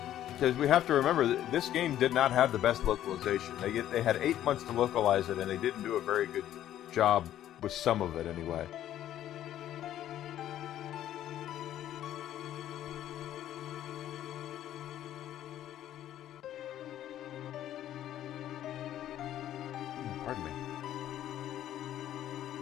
Because we have to remember that this game did not have the best localization. They had 8 months to localize it, and they didn't do a very good job with some of it anyway.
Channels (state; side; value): quieter; right; 12.0 dB